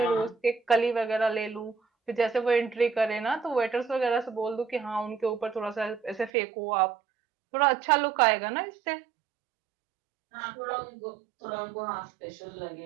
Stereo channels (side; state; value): left; drops out; at 6.3 s